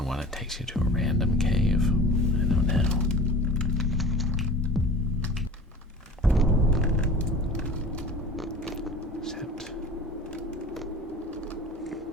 one, it takes you to a random cave. I don't know. Except,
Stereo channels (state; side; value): normal; both; correlation 0.41